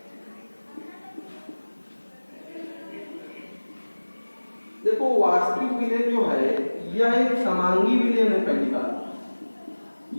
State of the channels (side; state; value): both; inverted; correlation -1.00